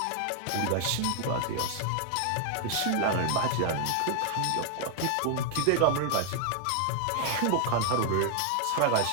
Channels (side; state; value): both; different; correlation 0.00